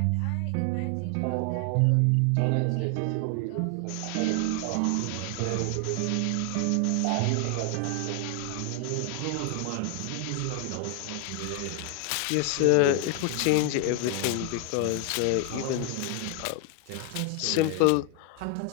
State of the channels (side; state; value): both; different; correlation 0.00